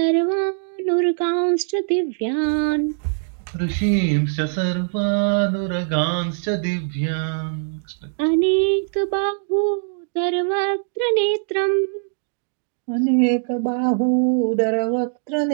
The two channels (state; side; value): silent; left; digital silence